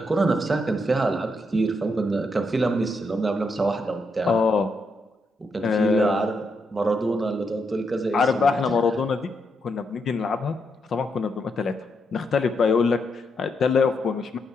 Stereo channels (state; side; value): normal; both; correlation 0.80